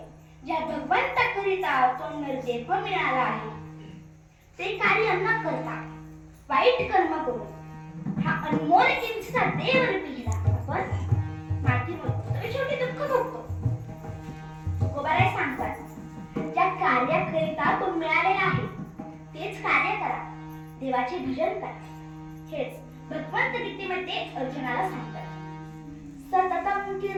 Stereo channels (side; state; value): both; identical; correlation 1.00